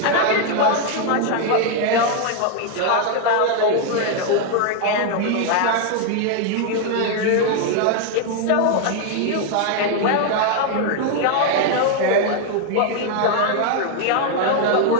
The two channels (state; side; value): different; both; correlation 0.00